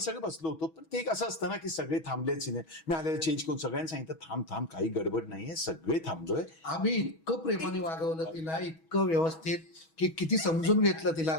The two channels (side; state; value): right; late; 6.2 ms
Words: सगळे बसलो होतो. पण ते एक असं असतं ना की सगळे थांबले सिने, मी आलेला चेंज करून सगळ्यांनी सांगितलं थांब थांब काही गडबड नाहीये, सगळे थांबलोय. आम्ही इतकं प्रेमाने वागवलं तिला, इतकं व्यवस्थित की किती समजून घेतलं तिला